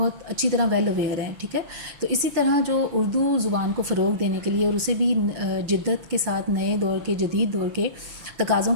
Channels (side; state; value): left; late; 6.6 ms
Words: اچھی طرح ویل اویئر ہیں، ٹھیک ہے. تو اسی طرح جو اردو زبان کو فروغ دینے کے لیے اور اسے بھی جدت کے ساتھ نئے دور کے، جدید دور کے تقاضوں